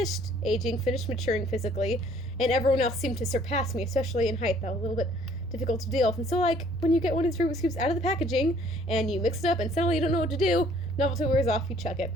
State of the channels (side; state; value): both; normal; correlation 0.59